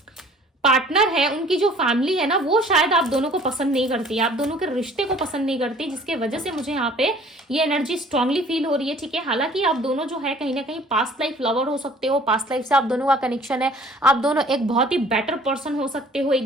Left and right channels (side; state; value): both; normal; correlation 0.52